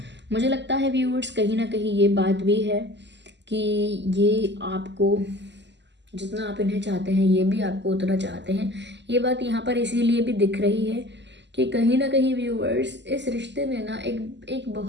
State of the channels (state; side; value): late; left; 0.51 ms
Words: मुझे लगता है व्यूअर्स कहीं ना कहीं ये बात भी है कि ये आपको जितना आप इन्हें चाहते हैं ये भी आपको उतना चाहते हैं। ये बात यहाँ पर इसीलिए भी दिख रही है कि कहीं ना कहीं व्यूअर्स इस रिश्ते में ना एक